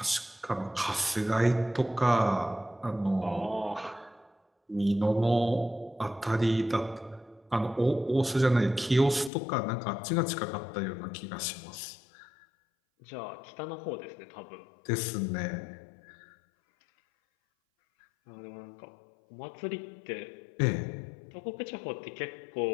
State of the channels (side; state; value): right; drops out; at 9.3 s